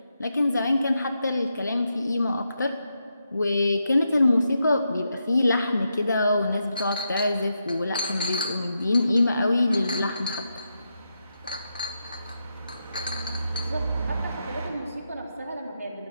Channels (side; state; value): both; inverted; correlation -0.85